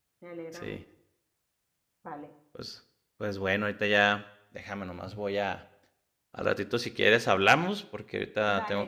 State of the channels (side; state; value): both; identical; correlation 1.00